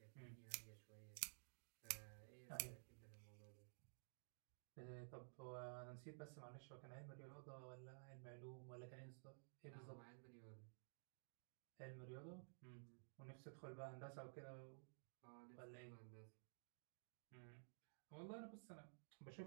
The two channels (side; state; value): left; silent; digital silence